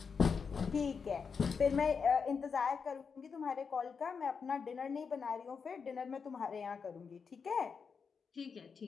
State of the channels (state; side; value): quieter; right; 5.8 dB